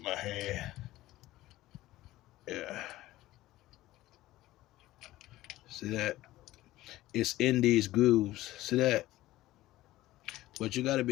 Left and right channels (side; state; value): right; quieter; 16.4 dB